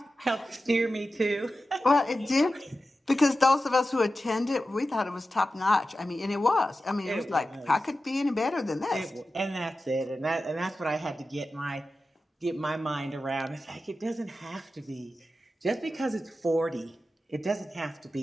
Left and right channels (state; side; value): normal; both; correlation 0.93